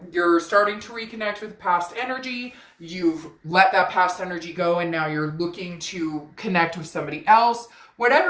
starting to reconnect with past energy. You've let that past energy go, and now you're looking to connect with somebody else.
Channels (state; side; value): identical; both; correlation 1.00